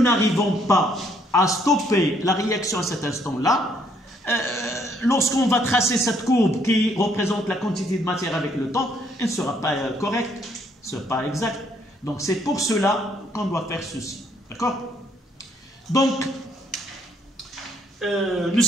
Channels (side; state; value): both; normal; correlation 0.68